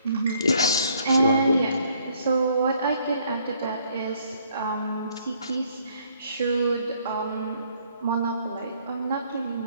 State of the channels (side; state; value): both; inverted; correlation -0.65